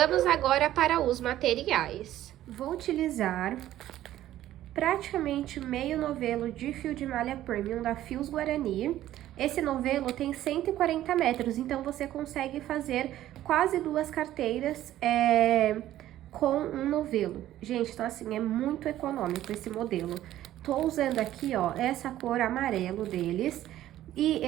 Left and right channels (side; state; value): left; quieter; 13.4 dB